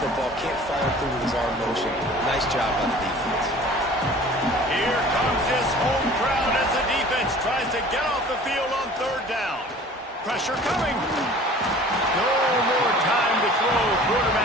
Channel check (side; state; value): both; normal; correlation 0.46